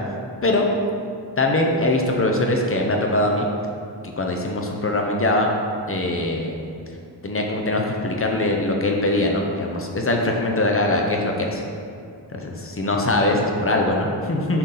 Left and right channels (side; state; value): both; normal; correlation 0.03